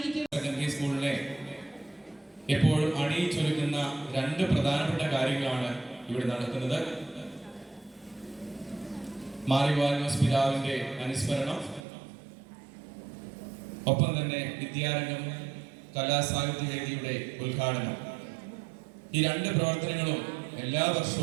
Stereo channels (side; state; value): left; drops out; at 11.8 s